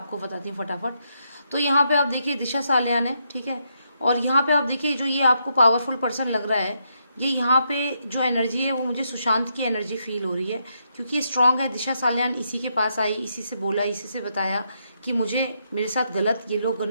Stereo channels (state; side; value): inverted; both; correlation -0.79